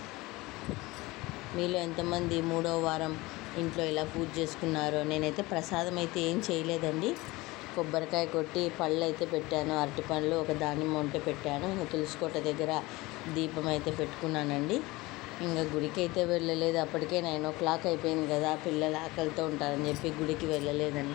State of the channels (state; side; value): quieter; right; 21.3 dB